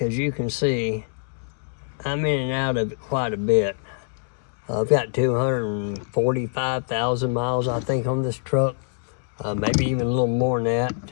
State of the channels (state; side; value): silent; right; digital silence